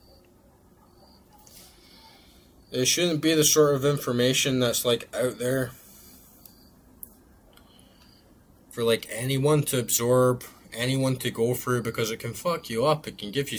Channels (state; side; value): identical; both; correlation 1.00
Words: It shouldn't be the sort of information that's like out there for like anyone to absorb, anyone to go through, because it can fuck you up. It can give you